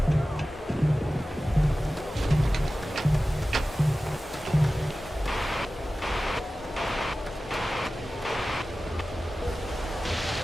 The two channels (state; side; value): normal; both; correlation 0.95